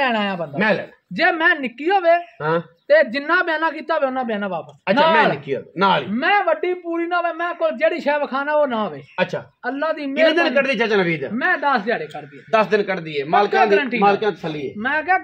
ਆਇਆ ਬੰਦਾ। ਮੈਂ ਲੈ ਜੇ ਮੈਂ ਨਿੱਕੀ ਹੋਵੇ ਹਾਂ ਤੇ ਜਿੰਨਾ ਬਿਆਨਾ ਕੀਤਾ ਹੋਵੇ ਉਹਨਾਂ ਬਿਆਨਾ ਵਾਪਸ। ਅੱਛਾ ਮੈਂ ਨਿੱਕੀ ਹੋਵੇ ਨਾਲ ਹੀ, ਮੈਂ ਵੱਡੀ ਪੂਰੀ ਨਾ ਹੋਵੇ, ਮੈਂ ਕੋਲ ਜਿਹੜੀ ਸ਼ੈ ਵਿਖਾਣਾ ਉਹ ਨਾ ਹੋਵੇ। ਅੱਛਾ ਅੱਲਾ ਦੀ ਕਿੰਨੇ ਦਿਨ ਕੱਢਦੀ ਚਾਚਾ ਨਵੀਦ? ਮੈਂ 10 ਦਿਹਾੜੇ ਕੱਢਦੀ 10 ਦਿਨ ਕੱਢਦੀ ਏ, ਮਾਲਕਾਂ ਦੀ ਤਸੱਲੀ ਏ। ਮੈਂ ਕਿਹਾ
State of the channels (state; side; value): identical; both; correlation 1.00